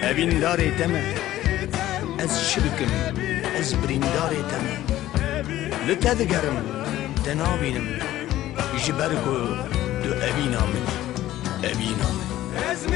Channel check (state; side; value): quieter; right; 14.3 dB